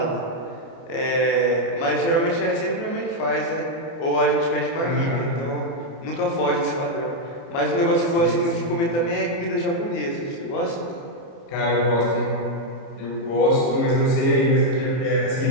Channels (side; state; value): right; late; 30 ms